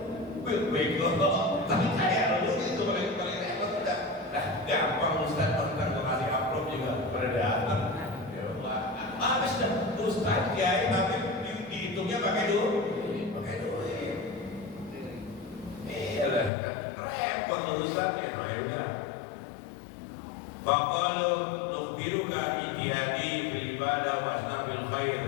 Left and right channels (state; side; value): drops out; right; at 16.5 s